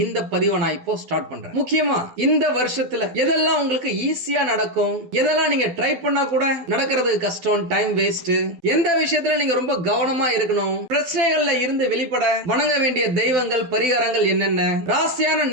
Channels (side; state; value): left; late; 12 ms